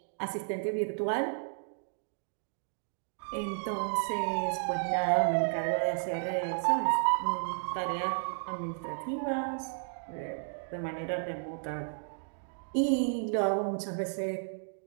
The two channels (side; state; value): left; silent; digital silence